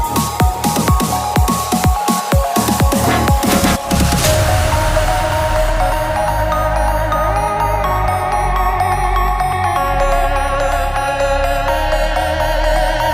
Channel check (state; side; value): identical; both; correlation 1.00